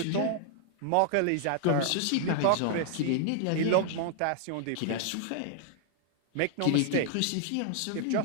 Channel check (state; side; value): different; both; correlation 0.00